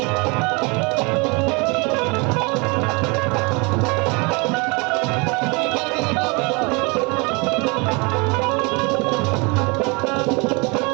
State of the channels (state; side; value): quieter; left; 29.2 dB